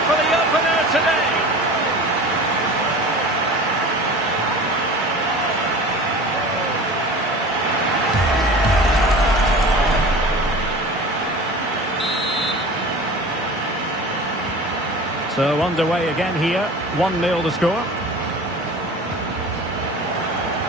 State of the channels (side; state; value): both; normal; correlation 0.37